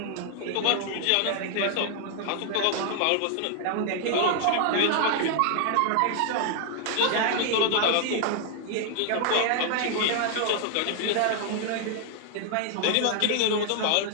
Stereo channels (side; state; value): both; different; correlation 0.00